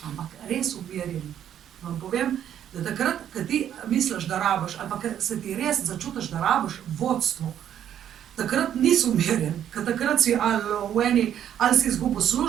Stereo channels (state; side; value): quieter; left; 10.1 dB